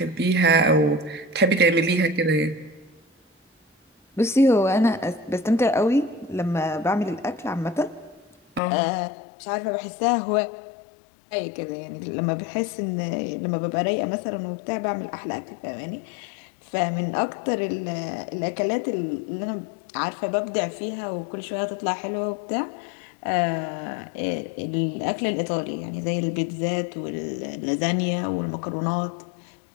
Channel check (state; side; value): drops out; right; at 8.6 s